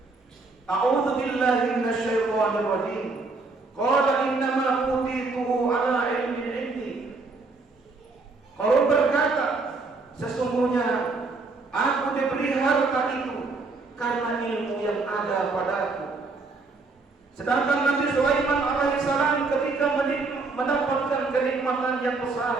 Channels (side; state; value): left; quieter; 3.8 dB